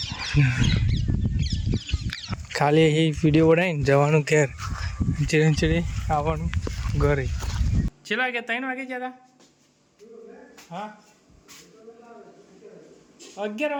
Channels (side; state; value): both; identical; correlation 1.00